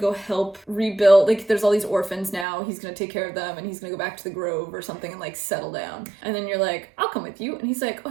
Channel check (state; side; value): drops out; left; at 2.5 s